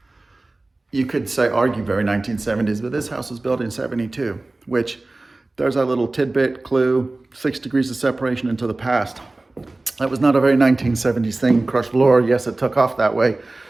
You could say, argue very 1970s, but this house was built in 72, which there's our little tidbit clue, 6 degrees of separation into the past. That was not a very 1970s thing. Crushed floor, yes, it took off that way,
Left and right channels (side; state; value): left; quieter; 3.0 dB